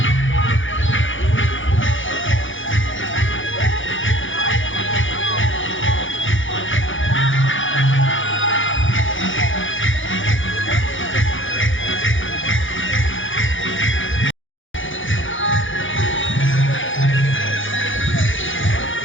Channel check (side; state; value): right; late; 0.57 ms